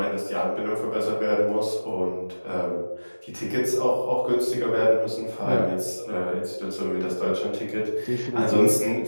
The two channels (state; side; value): inverted; both; correlation -1.00